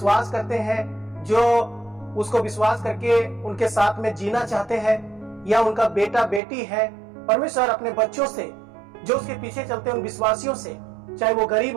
करते हैं, जो उसको विश्वास करके उनके साथ में जीना चाहते हैं या उनका बेटा बेटी है, परमेश्वर अपने बच्चों से जो उसके पीछे चलते हैं, उन विश्वासियों से, चाहे वो गरीब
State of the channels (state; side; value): drops out; left; at 6.4 s